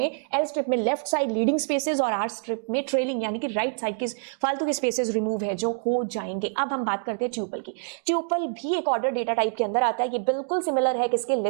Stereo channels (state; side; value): silent; left; digital silence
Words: लेफ्ट साइड लीडिंग स्पेसेस और आर स्ट्रिप में ट्रेलिंग, यानी कि राइट साइड के फालतू के स्पेसेस रिमूव है जो हो जाएंगे। अब हम बात करते हैं ट्यूपल की। ट्यूपल भी एक ऑर्डर डेटा टाइप के अंदर आता है। ये बिल्कुल सिमिलर है किसके,